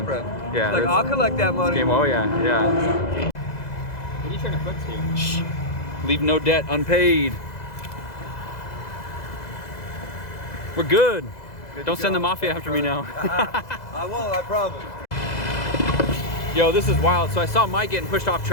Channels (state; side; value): late; right; 2.0 ms